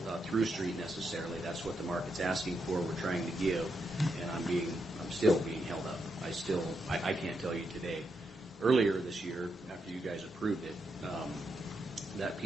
street necessarily. That's what the market's asking for. We're trying to give, and I'm still being held up. I can't tell you today. Earlier this year, after you guys approved it, that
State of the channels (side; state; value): both; normal; correlation 0.82